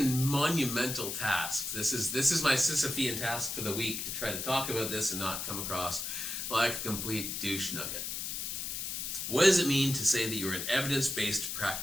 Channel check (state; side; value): noise; left; hiss, 4 dB below the sound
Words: monumental task. This is my Sisyphean task for the week, to try to talk about this and not come across like a complete douche nugget. What does it mean to say that you're an evidence-based